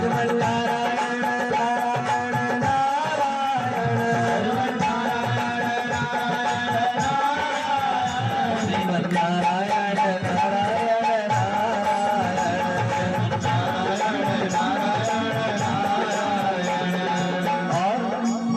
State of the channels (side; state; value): both; identical; correlation 1.00